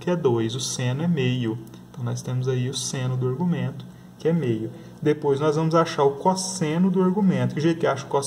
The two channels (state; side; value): identical; both; correlation 1.00